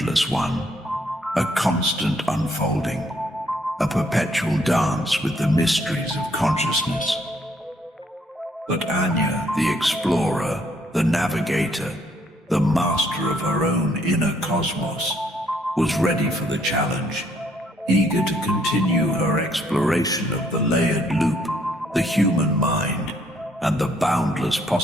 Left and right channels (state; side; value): normal; both; correlation 0.68